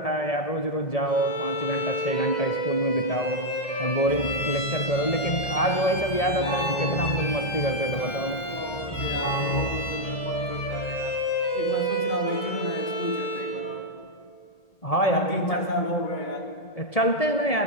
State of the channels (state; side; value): late; right; 1.8 ms